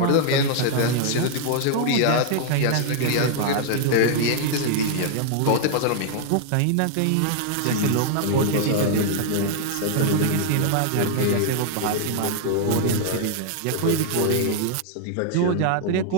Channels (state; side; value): different; both; correlation 0.00